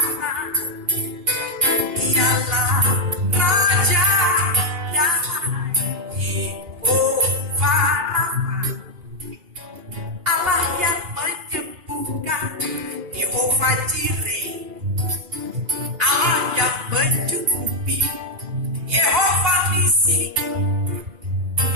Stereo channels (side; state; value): left; late; 2.7 ms